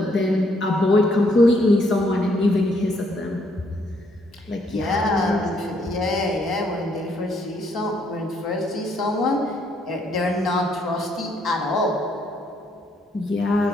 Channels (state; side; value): normal; both; correlation 0.70